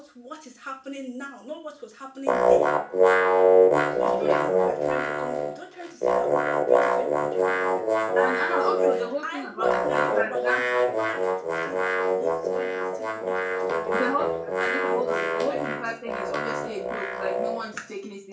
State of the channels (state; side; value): identical; both; correlation 1.00